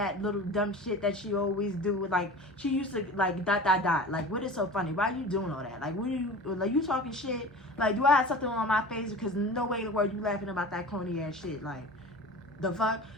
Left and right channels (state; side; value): normal; both; correlation 0.36